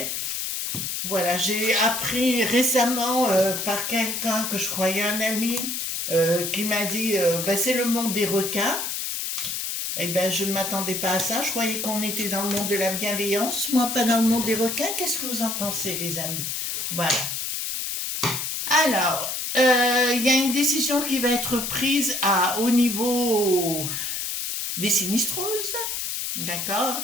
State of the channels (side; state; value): left; noise; hiss, 3 dB below the sound